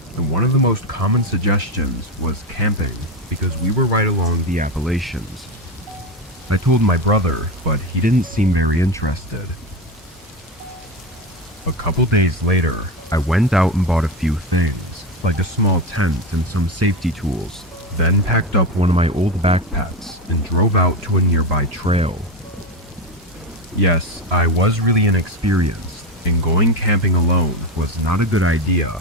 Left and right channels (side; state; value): both; normal; correlation 0.17